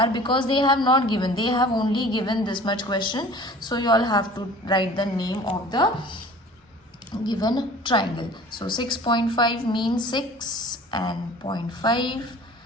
because they have not given, they have only given this much question. So you all have to write the name of the given triangle. So 6.5 means 6 and 0.5.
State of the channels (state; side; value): normal; both; correlation 0.45